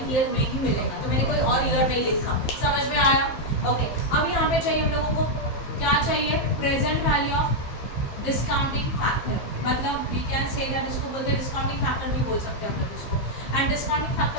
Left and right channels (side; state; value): right; late; 15 ms